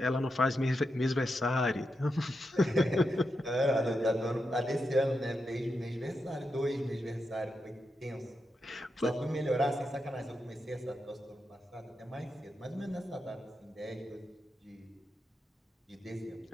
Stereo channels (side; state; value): both; normal; correlation 0.86